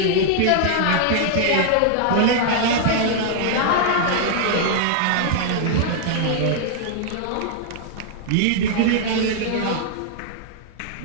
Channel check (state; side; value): different; both; correlation -0.01